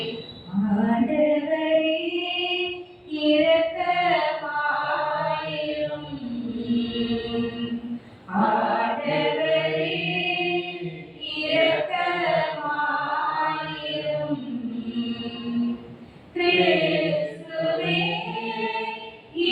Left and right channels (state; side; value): identical; both; correlation 1.00